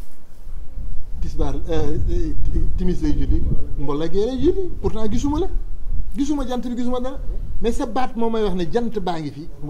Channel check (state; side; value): identical; both; correlation 1.00